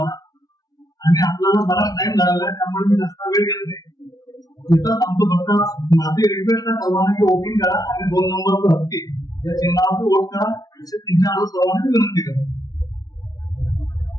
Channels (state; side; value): late; right; 0.18 ms